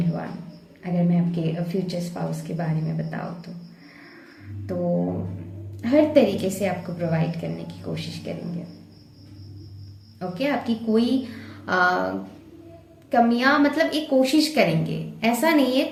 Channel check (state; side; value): identical; both; correlation 1.00